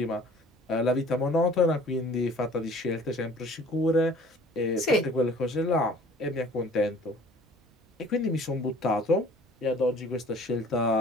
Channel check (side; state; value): both; normal; correlation 0.50